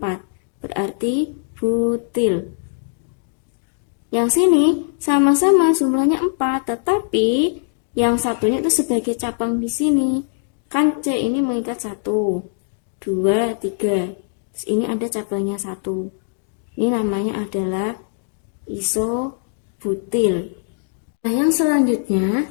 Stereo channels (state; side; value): silent; right; 65 dB below the other